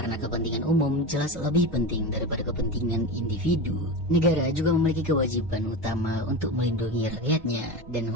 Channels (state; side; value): normal; both; correlation 0.23